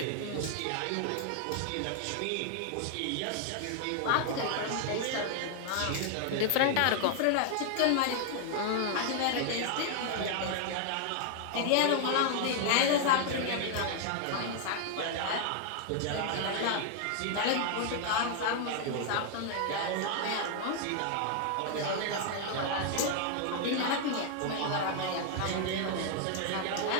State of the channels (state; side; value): different; both; correlation 0.00